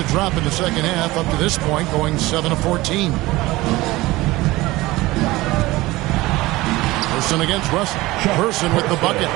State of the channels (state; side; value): quieter; left; 19.5 dB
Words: drop in the second half up to this point, going 7 of 14. Person against Russell. Person with the bucket.